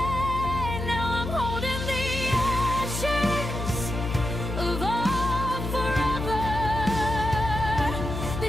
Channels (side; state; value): left; noise; hum, 4 dB below the sound